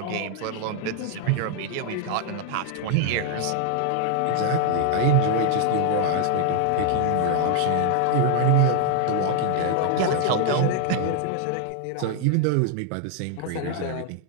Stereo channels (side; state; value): both; different; correlation 0.00